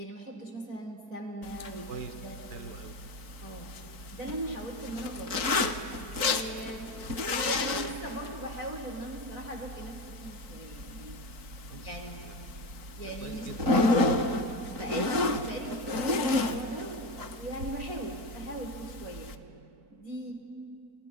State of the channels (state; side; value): late; left; 4.5 ms